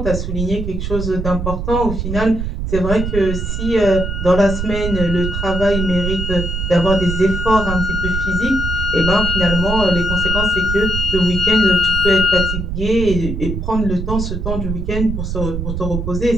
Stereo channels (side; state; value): right; noise; rumble, 4 dB below the sound